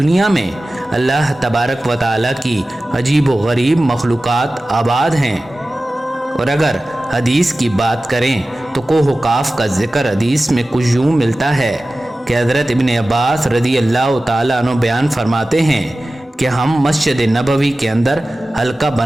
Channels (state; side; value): normal; both; correlation 0.96